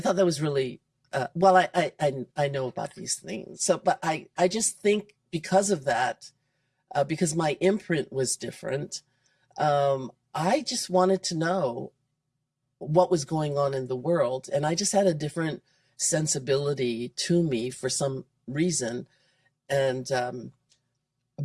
that was really, well, I know about these things. So, but I just think because of that, because my imprint was different, I just wanted to know what was going on in the world. And I just had a different sensibility to me for some reason. And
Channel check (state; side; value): identical; both; correlation 1.00